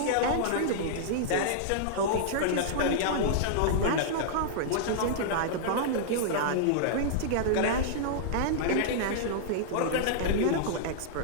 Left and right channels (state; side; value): different; both; correlation -0.02